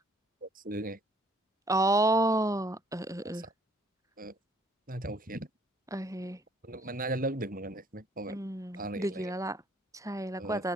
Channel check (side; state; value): both; normal; correlation 0.61